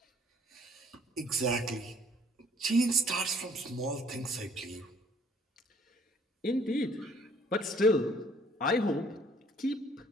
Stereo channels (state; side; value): normal; both; correlation 0.58